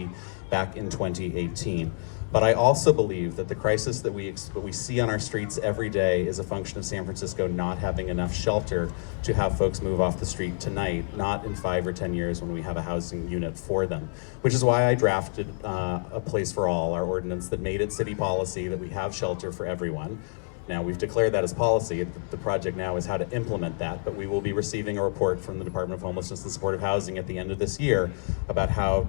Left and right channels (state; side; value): silent; right; 57 dB below the other